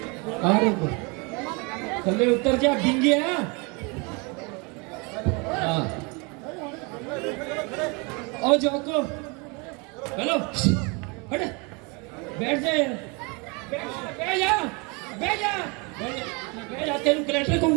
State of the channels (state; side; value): quieter; left; 30.3 dB